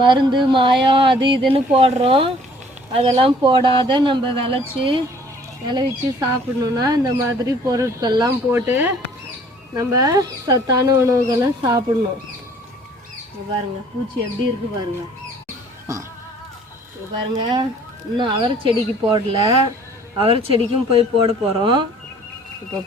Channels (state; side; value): normal; both; correlation 0.55